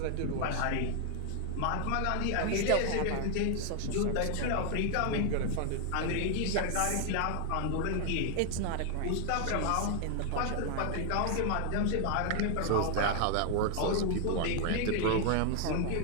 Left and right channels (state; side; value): different; both; correlation 0.00